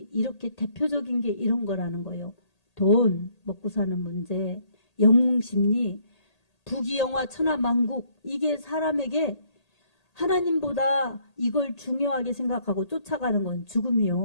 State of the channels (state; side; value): late; right; 1.8 ms